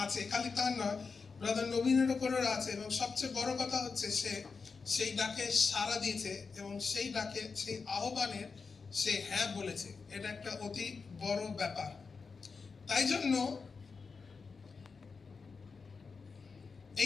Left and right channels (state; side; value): quieter; right; 4.9 dB